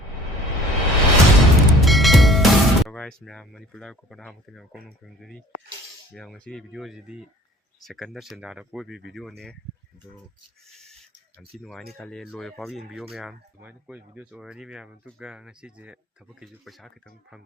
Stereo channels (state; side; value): normal; both; correlation 0.48